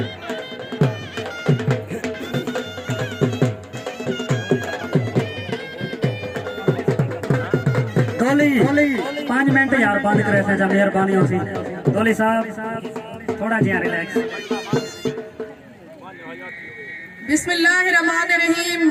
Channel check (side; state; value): both; identical; correlation 1.00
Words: دولی 5 منٹ یار بند کرے سے جب مہربانی ہو سی. دولی صاحب تھوڑا جہاں ریلیکس. بسم اللہ الرحمن الرحیم.